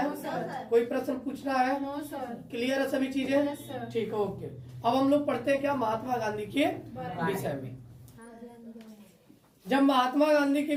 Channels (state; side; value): identical; both; correlation 1.00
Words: नो सर। है? कोई प्रश्न पूछना है? No sir. क्लियर है सभी चीजें? Yes sir. ठीक है, ओके। अब हम लोग पढ़ते हैं क्या महात्मा गांधी के विषय में। जब महात्मा गांधी के